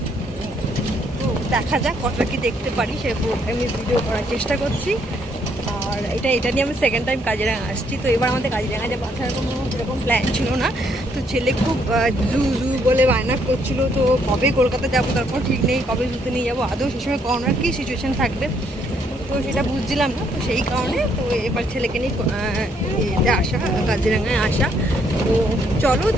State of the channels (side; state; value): both; normal; correlation 0.70